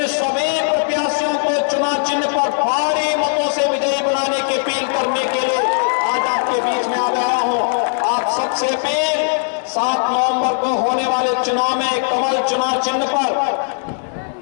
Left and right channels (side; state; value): right; silent; digital silence